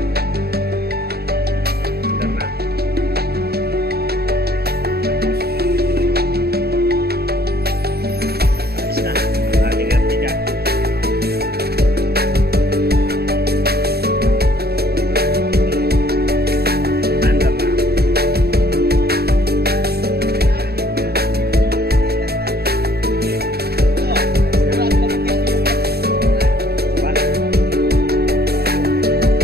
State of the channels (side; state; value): left; late; 0.46 ms